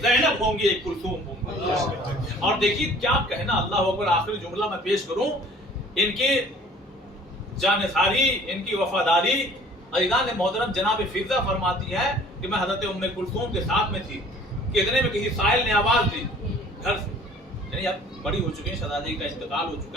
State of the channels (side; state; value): both; normal; correlation 0.51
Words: زینب ہوں گی, ایک کلثوم ہوں گی. اور دیکھیے کیا کہنا, اللہ اکبر. آخری جملہ میں پیش کروں, ان کی جانثاری, ان کی وفاداری. عزیزان محترم جناب فضہ فرماتی ہے کہ میں حضرت ام کلثوم کے ساتھ میں تھی کہ اتنے میں کسی سائل نے آواز دی گھر سے, یعنی اب بڑی ہو چکی ہیں, شہزادی کا انتقال ہو